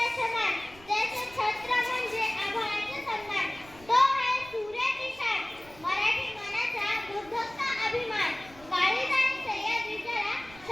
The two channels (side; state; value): right; noise; rumble, 22 dB below the sound